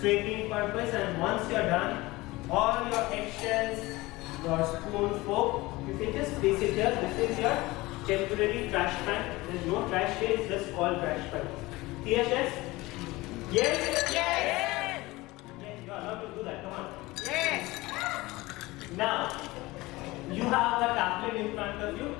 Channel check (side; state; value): right; quieter; 20.6 dB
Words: purpose, and once you are done, all your eggshells, your spoon, fork, you can just place it here. This is your temporary trash pan. There is no trash here, it's just called trash pan. Clear, yes? Yes? Yes. Yes, you are allowed to do that. Come on. Yes. Now, you have a tablet in front of you.